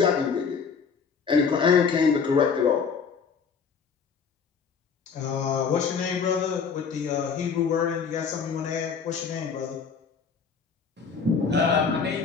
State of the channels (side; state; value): right; quieter; 5.9 dB